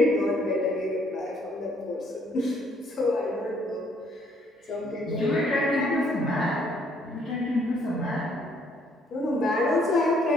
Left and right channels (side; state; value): both; normal; correlation 0.66